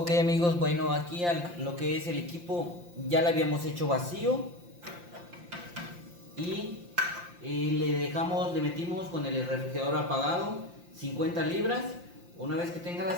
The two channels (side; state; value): left; late; 5.8 ms